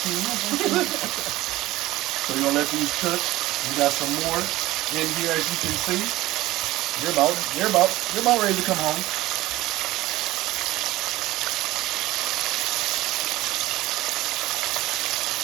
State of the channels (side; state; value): left; quieter; 17.4 dB